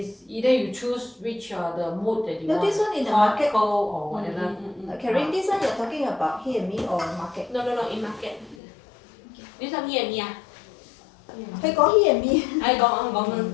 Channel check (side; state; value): right; drops out; at 8.6 s